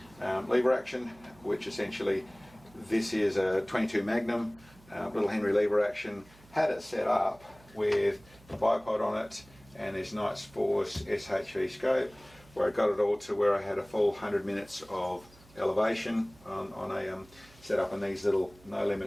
lever action, which essentially this is a 22 Magnum little Henry lever action. Had it set up with a bipod on it and this Nights Force SHV scope, where I got it all to where I had a full 100 minutes of elevation on a setup in these little no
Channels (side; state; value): right; noise; hum, 25 dB below the sound